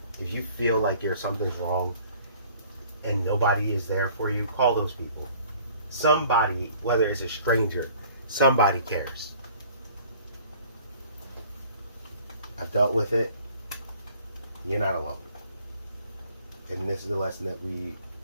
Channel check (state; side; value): inverted; both; correlation -0.53